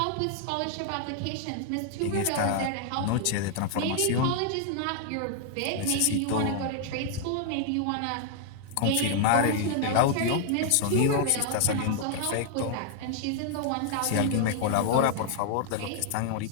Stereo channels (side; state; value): both; different; correlation 0.00